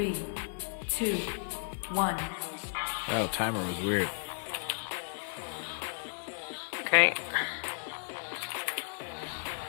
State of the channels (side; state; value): right; silent; digital silence